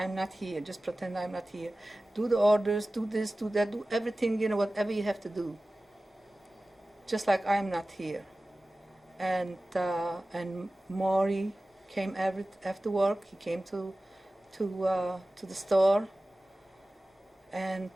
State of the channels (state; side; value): normal; both; correlation 0.96